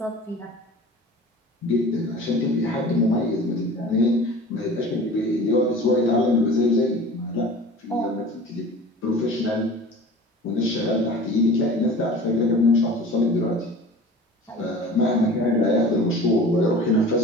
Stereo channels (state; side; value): normal; both; correlation 0.40